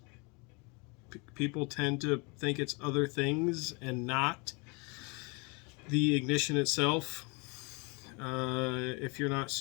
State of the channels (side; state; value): right; quieter; 30.2 dB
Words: People tend to think it's other things and not the ignition itself. If you're not